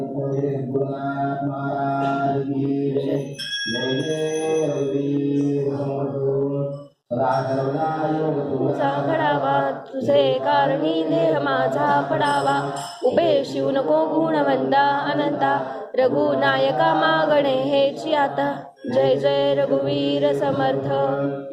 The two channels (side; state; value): both; identical; correlation 1.00